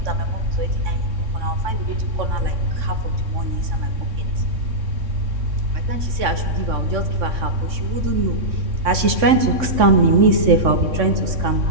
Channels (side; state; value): left; late; 3.6 ms